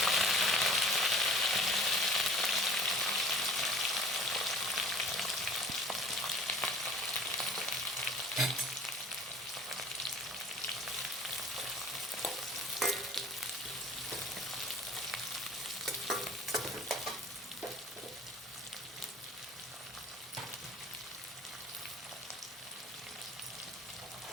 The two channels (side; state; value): both; normal; correlation 0.47